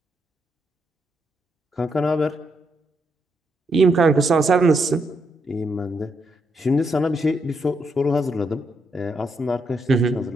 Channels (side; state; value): both; normal; correlation 0.78